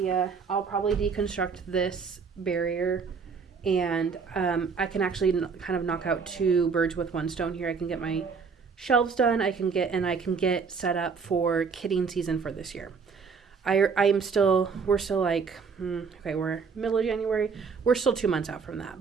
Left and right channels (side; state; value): left; quieter; 5.4 dB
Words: I'll probably deconstruct this barrier, and I can actually kind of knock out 2 birds with 1 stone here. I can get my shelves done. I can get set up for kidding season for this year. we're still like, okay, we're middle of January. We're still 2 months out from